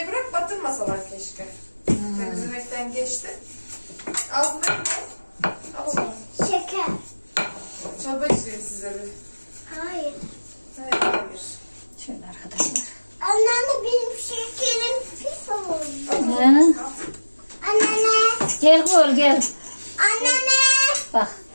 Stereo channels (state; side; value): inverted; both; correlation -1.00